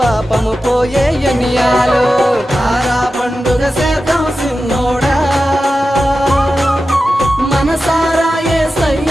పోయే ఎన్నియాలో. తారా పండుగ చేద్దాం సిన్నోడా, మనసారా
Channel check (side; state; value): both; normal; correlation 0.92